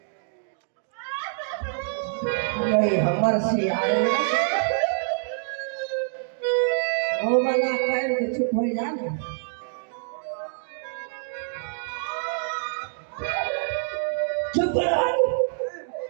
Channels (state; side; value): silent; left; digital silence